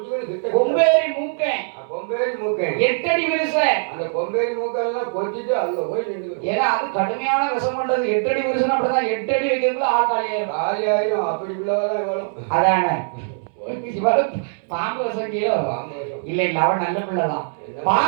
கொம்பேரி மூக்கன். கொம்பேரி மூக்கன் 8 அடி விரிசன். அந்த கொம்பேரி மூக்கெல்லாம் கொத்திட்டு அங்க போய் நின்று. ஏன்னா அது கடுமையான விஷம் பண்றது. 8 அடி விரிசன் அப்படிதான் 8 அடி வைக்கிறதுல ஆள் காலியாயிரும். அப்படி உள்ளவதான் இவ்வளவு. அதானே பாம்பு விஷம் கீழோ இல்ல இல்ல அவன் நல்ல பிள்ளைதான்.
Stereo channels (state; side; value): silent; left; 64 dB below the other